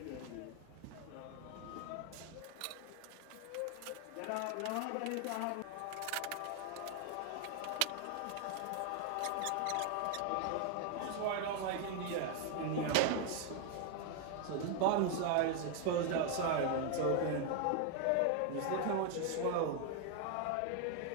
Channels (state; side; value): different; both; correlation 0.00